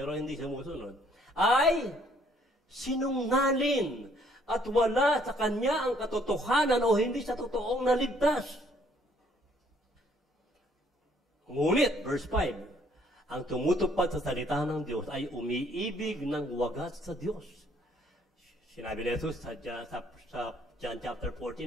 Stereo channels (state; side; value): normal; both; correlation 0.64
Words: hindi sumusunod, ay sinungaling at wala sa kanya ang katotohanan o hindi sa totoong naligtas. Ngunit, verse 5, ang tumutupad sa salita ng Diyos ay umiibig ng wagas sa Diyos. Sinabi ni Jesus sa John chapter